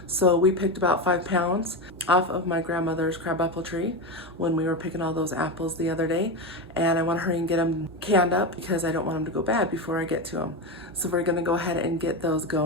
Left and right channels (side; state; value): both; normal; correlation 0.17